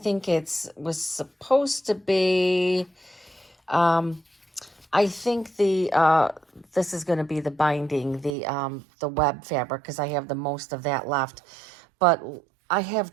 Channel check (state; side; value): drops out; left; at 8.3 s